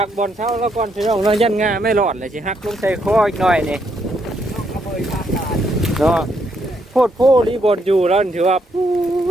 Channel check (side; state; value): both; normal; correlation 0.75